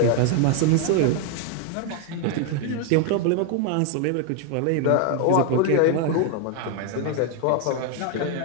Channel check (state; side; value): different; both; correlation 0.01